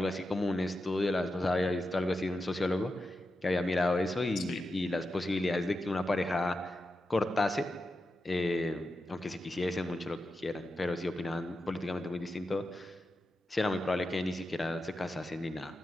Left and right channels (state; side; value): normal; both; correlation 0.90